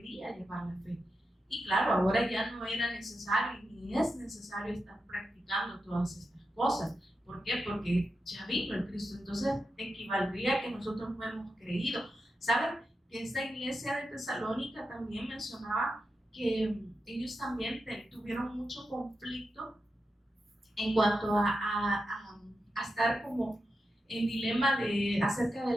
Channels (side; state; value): both; normal; correlation 0.89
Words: llevar la fe. Y claro, ahora ya no era necesario, ni es necesario estar practicando todas estas cosas. ¿Por qué? Porque ya vino el Cristo. Entonces, equivaldría a que nosotros no hemos creído. ¿Saben? Que esta iglesia de Tesalónica también mencionaba que ellos también tuvieron mucho conflicto en cuanto a estar como en dilema acerca